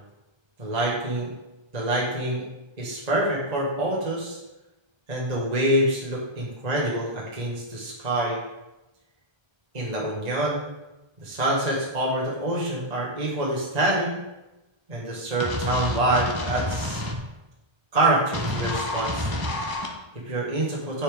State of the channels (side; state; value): left; late; 1.3 ms